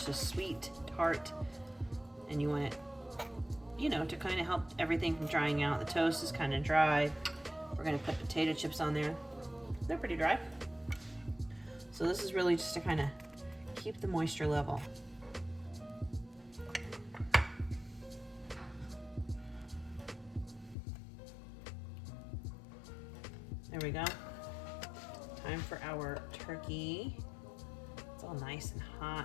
sweet tart, and you want it, you know, to kind of help everything from drying out. The toast is kind of dry. We're gonna put potato chips on there. They're pretty dry. So this is really just to kind of keep the moisture level. There we go. Time for our turkey. It's all nice and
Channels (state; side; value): drops out; right; at 20.8 s